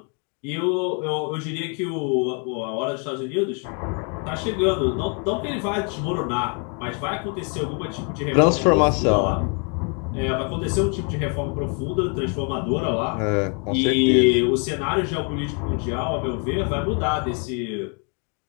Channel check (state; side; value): quieter; right; 37.4 dB